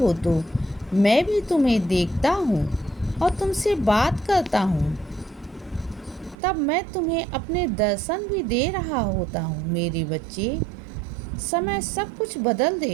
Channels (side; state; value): left; drops out; at 6.4 s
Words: तो मैं भी तुम्हें देखता हूँ और तुमसे बात करता हूँ। तब मैं तुम्हें अपने दर्शन भी दे रहा होता हूँ। मेरे बच्चे, समय सब कुछ बदल